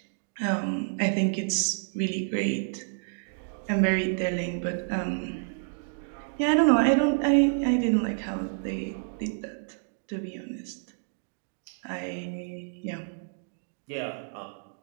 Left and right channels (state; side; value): silent; left; digital silence